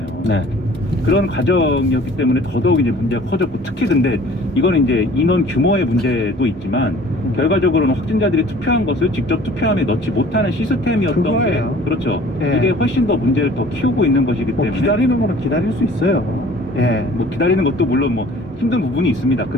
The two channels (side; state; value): both; normal; correlation 0.49